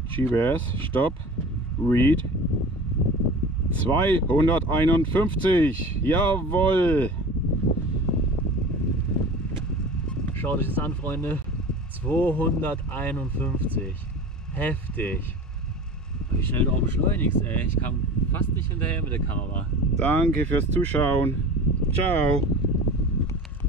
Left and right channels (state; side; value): normal; both; correlation 0.37